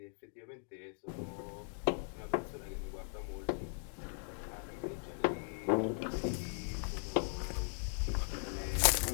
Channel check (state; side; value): silent; right; 52 dB below the other